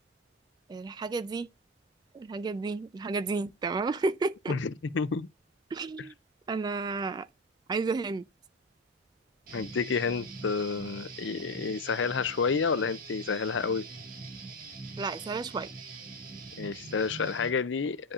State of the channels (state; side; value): normal; both; correlation 0.18